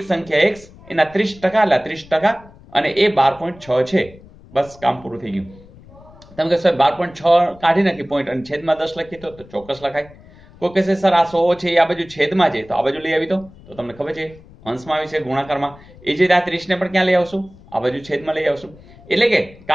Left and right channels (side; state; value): left; noise; rumble, 23 dB below the sound